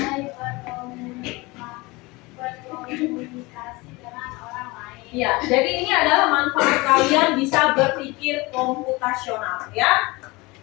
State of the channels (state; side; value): quieter; right; 23.5 dB